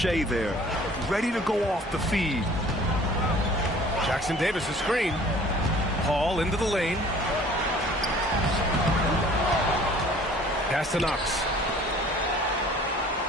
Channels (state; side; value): normal; both; correlation 0.51